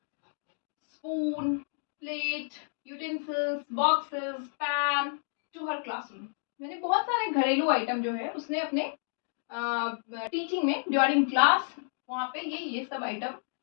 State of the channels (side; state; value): right; silent; digital silence